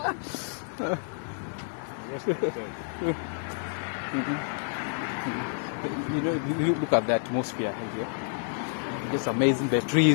You look at the atmosphere here. Just amazing. The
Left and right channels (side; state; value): right; silent; 59 dB below the other